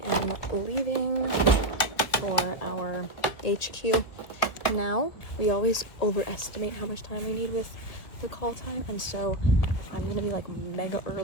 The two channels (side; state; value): right; late; 2.1 ms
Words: am leaving for our HQ now. We always overestimate how much time we need with the call time, and so I'm gonna be like mega